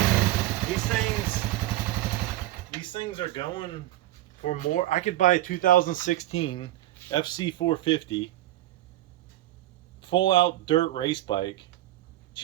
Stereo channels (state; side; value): quieter; left; 15.3 dB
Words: These things are going for more. I could buy a 2016 FC450 full out dirt race bike